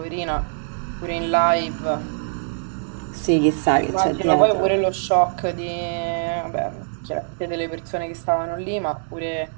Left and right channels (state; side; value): silent; left; digital silence